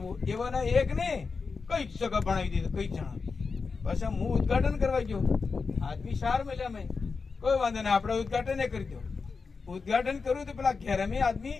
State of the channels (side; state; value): right; quieter; 4.8 dB